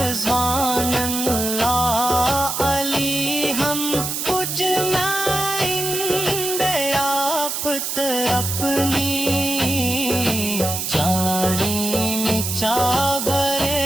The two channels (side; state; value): right; noise; hiss, 2 dB below the sound